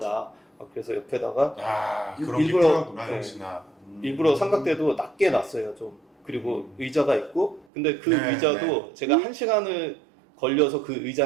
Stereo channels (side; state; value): left; drops out; at 7.7 s